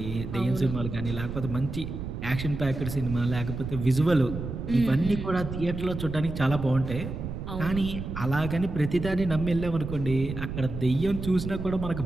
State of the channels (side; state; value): right; noise; rumble, 7 dB below the sound